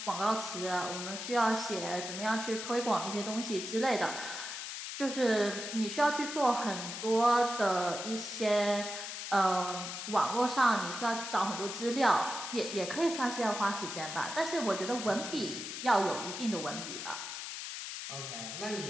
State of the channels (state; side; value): noise; left; hiss, 7 dB below the sound